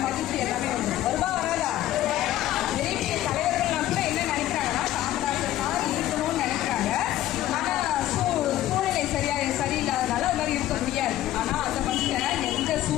மகிழ்ச்சி எல்லாமே வருவா வராதா. பெரிய தலைவர்கள்லாம் கூட என்ன நினைக்கிறாங்கன்னா காமராஜர் மாதிரி இருக்கணும்னு நினைக்கிறாங்க. ஆனா சூழ்நிலை சரியில்லாதனால அது மாதிரி இருக்க முடியாது. ஆனா அந்த மனுஷன் எந்த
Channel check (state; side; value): quieter; right; 13.8 dB